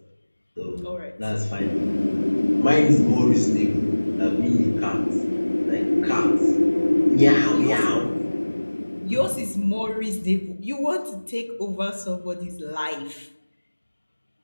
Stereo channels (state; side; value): inverted; both; correlation -1.00